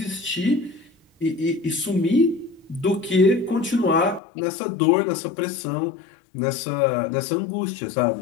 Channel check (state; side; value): drops out; right; at 4.2 s